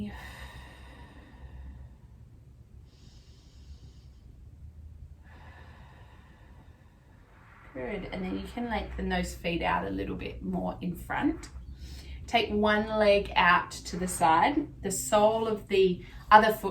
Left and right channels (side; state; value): both; identical; correlation 1.00